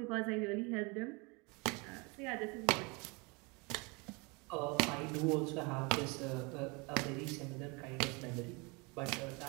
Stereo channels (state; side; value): quieter; left; 28.6 dB